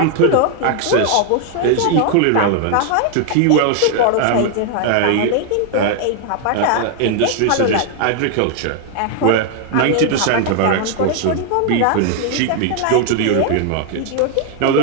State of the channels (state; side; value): different; both; correlation 0.00